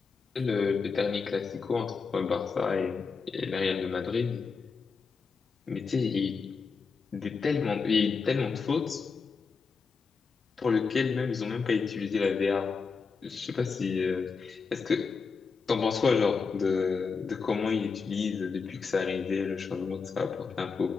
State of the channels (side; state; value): right; quieter; 5.1 dB